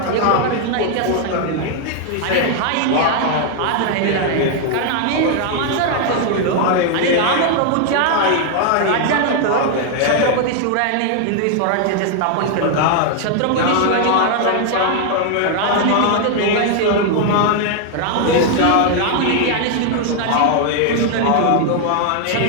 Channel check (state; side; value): different; both; correlation 0.00